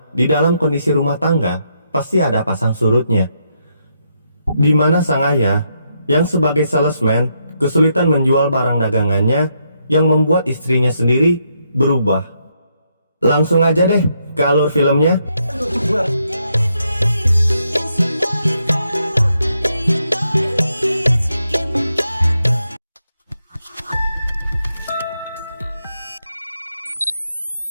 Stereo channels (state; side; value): inverted; both; correlation -0.78